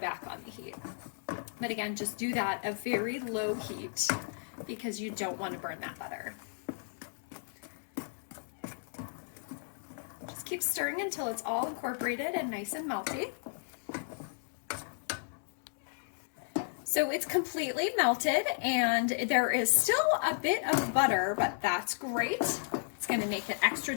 on the heat. But again, just do that at very low heat because you don't want to burn that butter. Just keep stirring until it's all incorporated and nice and melty. So it's completely melted and there is still a bit of butter, but that's great. It's going to make it extra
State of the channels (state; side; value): silent; right; digital silence